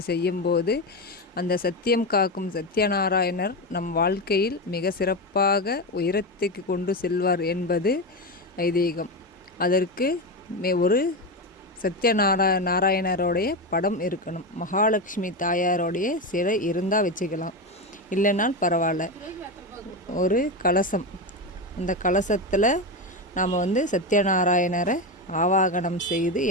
செய்யும்போது அந்த சத்தியம் காக்கும் சத்யநாராயணர் நம் வாழ்க்கையில் மிக சிறப்பாக உயரத்துக்கு கொண்டு செல்வார் என்பது ஐதீகம். அதற்கு ஒரு நாராயணருடைய படம் இருக்கணும். மகாலட்சுமி தாயாரோடைய சிலை இருந்தால் வச்சுக்கலாம், இல்லைனால் பரவாயில்ல. ஒரு கலசம், அந்த கலசத்தில் நாம் சத்யநாராயணரை ஆவாகனம் செய்து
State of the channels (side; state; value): both; normal; correlation 0.16